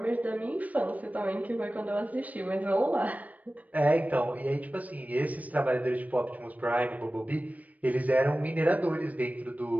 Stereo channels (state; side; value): late; left; 0.073 ms